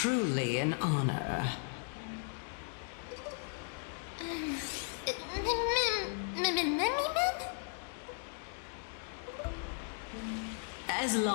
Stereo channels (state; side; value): silent; right; 54 dB below the other